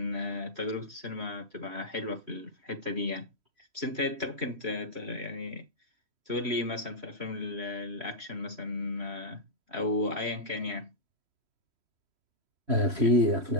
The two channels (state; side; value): late; left; 3.1 ms